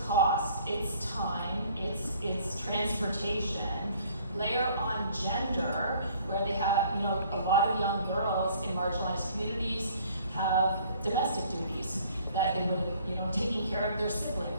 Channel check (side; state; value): both; inverted; correlation -0.57